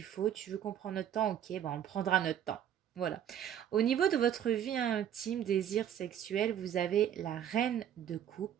faut, tu veux qu'on prenne notre temps, ok, ben on prendra notre temps. Voilà. Au niveau de votre vie intime, désir sexuel, vous avez la reine de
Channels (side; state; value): left; quieter; 9.8 dB